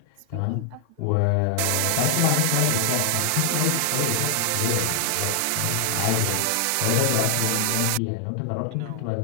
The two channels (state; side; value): different; both; correlation 0.00